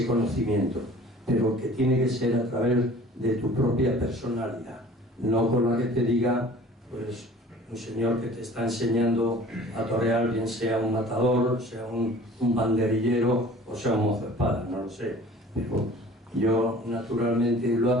conocimiento, pero que tiene que ser a través de tu propia personalidad, no con la que te diga pues un señor que te está enseñando a torear, bien sea un matador, sea un banderillero o sea un mozo de espada, no lo sé, pero yo naturalmente lo he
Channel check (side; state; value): both; normal; correlation 0.47